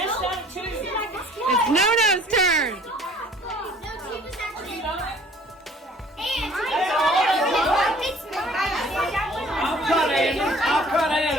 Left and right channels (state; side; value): normal; both; correlation 0.54